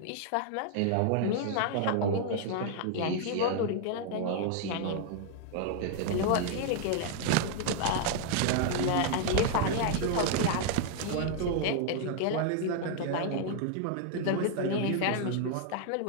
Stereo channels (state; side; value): different; both; correlation 0.00